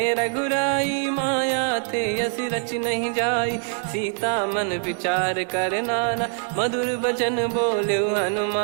रघुराई। माया थे यस रच नहीं जाई सीता मन विचार कर नाना। मधुर बचन बोले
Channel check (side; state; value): left; quieter; 38.7 dB